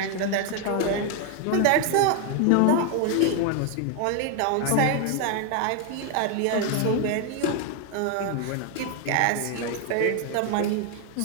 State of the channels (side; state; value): both; different; correlation 0.00